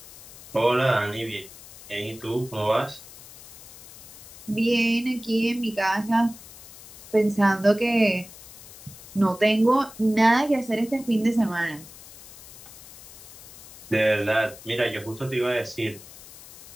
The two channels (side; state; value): left; noise; hiss, 18 dB below the sound